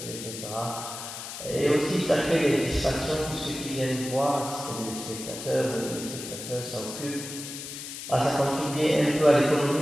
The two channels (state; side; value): noise; left; hiss, 9 dB below the sound